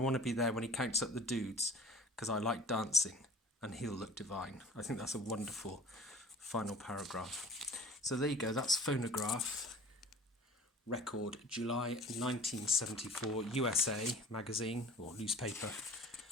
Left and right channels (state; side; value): normal; both; correlation 0.43